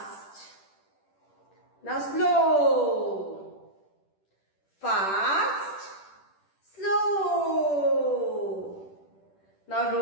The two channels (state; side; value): late; right; 10 ms